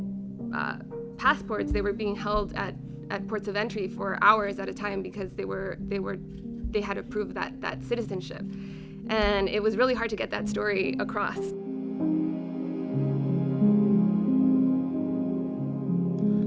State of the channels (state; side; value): identical; both; correlation 1.00